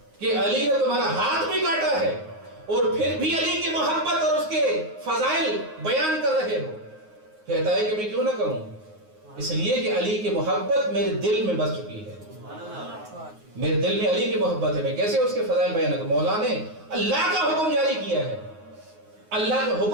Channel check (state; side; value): late; left; 9.5 ms